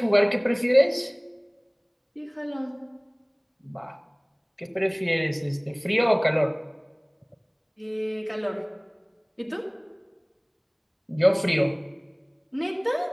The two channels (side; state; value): both; identical; correlation 1.00